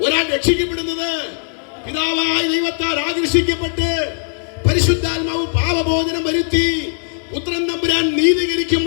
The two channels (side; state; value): right; silent; 67 dB below the other